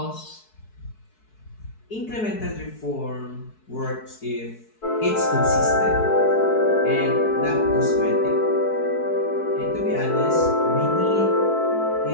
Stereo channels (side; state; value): right; late; 4.6 ms